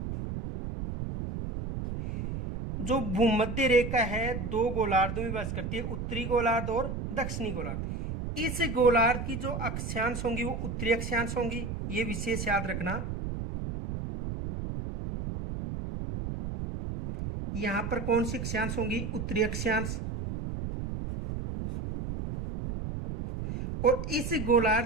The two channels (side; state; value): right; noise; rumble, 5 dB below the sound